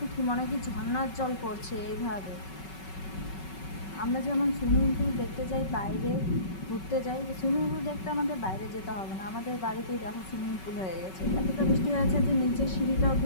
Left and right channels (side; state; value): right; late; 5.3 ms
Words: কি, মনে হয় কি ঝর্ণার জল পড়ছে এইভাবে। আমরা যেমন সুইমিং পুল দেখতে যাই, বাইরে ঘুরতে যাই, সুইমিং পুল দেখতে আমাদের বাইরে যেতে হবে না, আমাদের বাড়িতেই দেখো সুইমিং পুল হয়ে গেছে। এতটা বৃষ্টি হয়েছে যে নিচের সিঁড়িটা